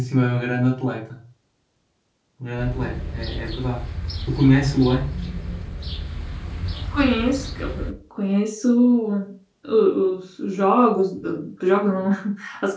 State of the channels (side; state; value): both; identical; correlation 1.00